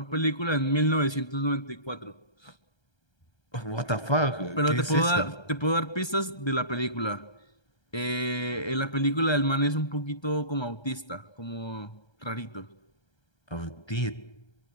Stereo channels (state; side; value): late; right; 1.3 ms